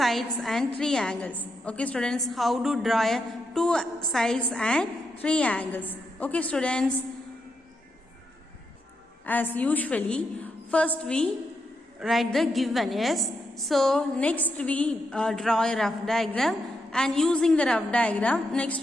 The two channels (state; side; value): normal; both; correlation 0.83